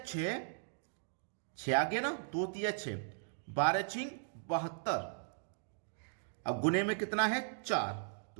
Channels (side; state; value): left; silent; digital silence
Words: 6 आ गया ना, 2 तिया 6, 12 छिंग 72। अब गुने में कितना है, 4,